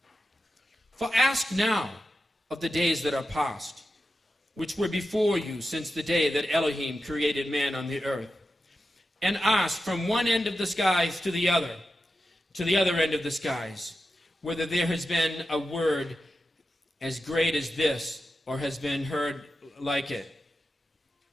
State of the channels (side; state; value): both; normal; correlation 0.90